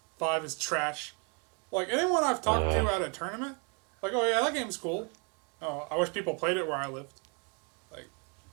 5 is trash. Like anyone I've talked to at a tournament, like, oh yeah, that game's cool. Oh, I wish people played it where I lived.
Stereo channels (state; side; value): quieter; left; 34.9 dB